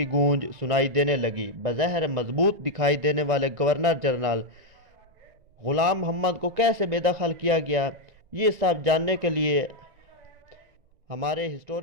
گونج سنائی دینے لگی۔ بظاہر مضبوط دکھائی دینے والے گورنر جنرل غلام محمد کو کیسے بے دخل کیا گیا، یہ سب جاننے کے لیے ہمارے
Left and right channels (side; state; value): left; late; 1.9 ms